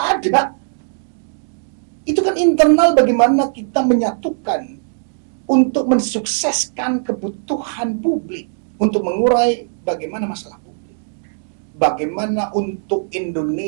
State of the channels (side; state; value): left; silent; digital silence